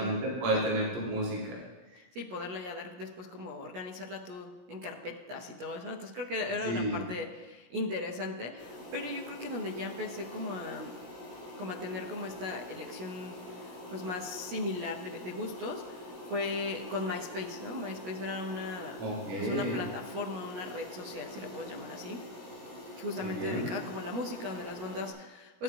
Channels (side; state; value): left; late; 17 ms